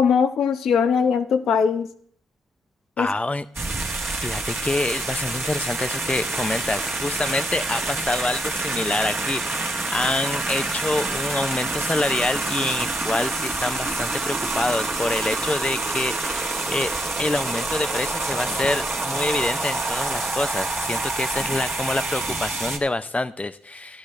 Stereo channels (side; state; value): both; normal; correlation 0.76